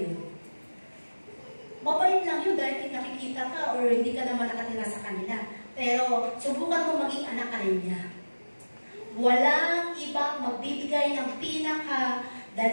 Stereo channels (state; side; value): inverted; both; correlation -1.00